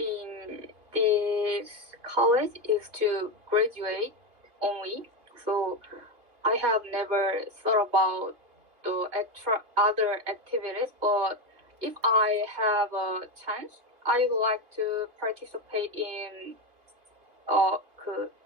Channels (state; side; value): late; left; 3.0 ms